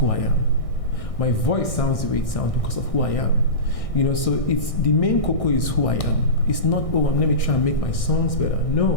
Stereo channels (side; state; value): right; late; 1.6 ms